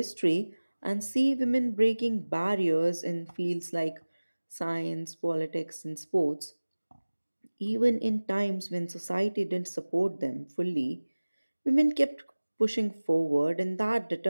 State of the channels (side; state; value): both; inverted; correlation -1.00